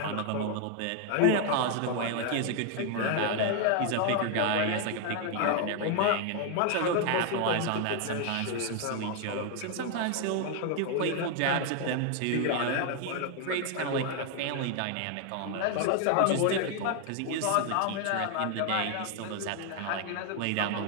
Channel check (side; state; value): both; different; correlation 0.00